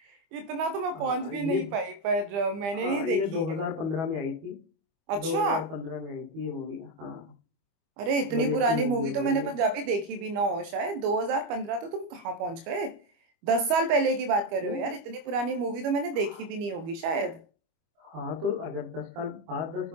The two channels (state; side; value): late; left; 25 ms